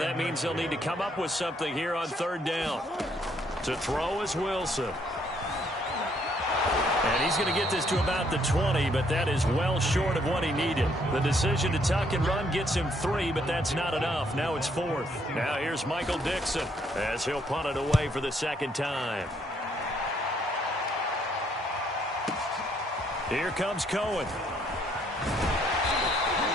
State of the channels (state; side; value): normal; both; correlation 0.69